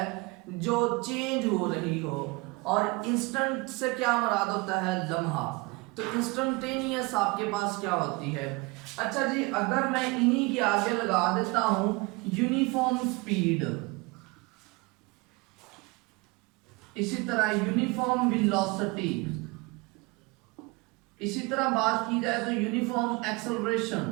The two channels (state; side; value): quieter; left; 25.9 dB